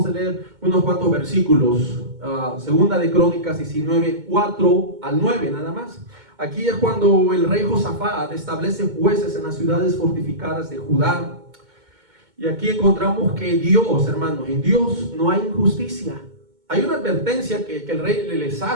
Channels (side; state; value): left; late; 2.2 ms